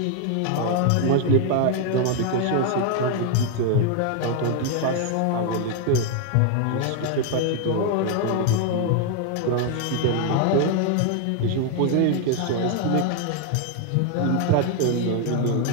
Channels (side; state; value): both; different; correlation 0.00